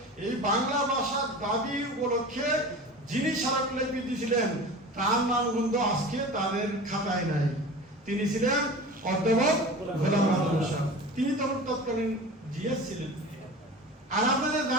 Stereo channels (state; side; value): normal; both; correlation 0.35